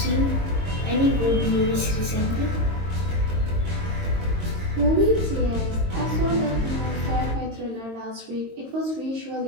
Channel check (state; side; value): late; left; 22 ms